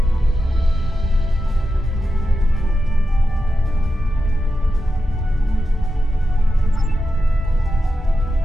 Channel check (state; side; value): normal; both; correlation 0.90